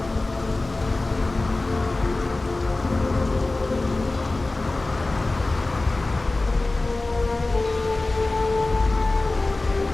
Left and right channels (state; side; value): quieter; right; 3.1 dB